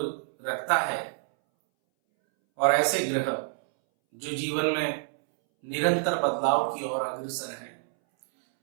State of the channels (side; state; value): left; silent; 60 dB below the other